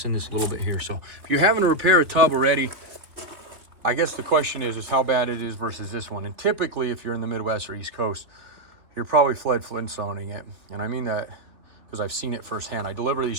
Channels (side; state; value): left; late; 3.2 ms